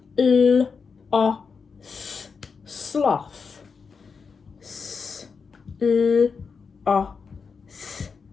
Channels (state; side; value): quieter; right; 5.4 dB